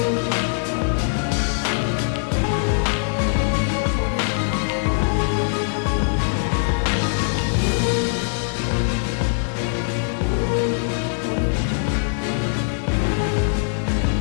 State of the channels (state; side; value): silent; right; digital silence